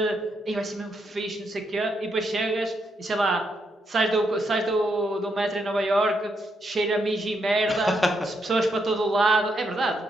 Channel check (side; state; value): both; normal; correlation 0.79